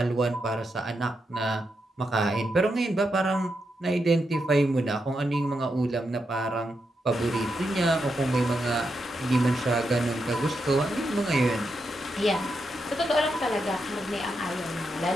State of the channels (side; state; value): both; normal; correlation 0.84